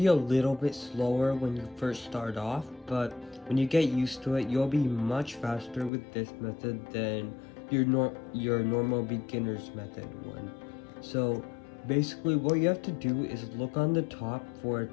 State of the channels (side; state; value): right; drops out; at 5.9 s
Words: a little bit slower when you first start off, but when you get used to it, you'll be much faster with this method than your normal beginner's method one. So basically what you have to do is look on the top for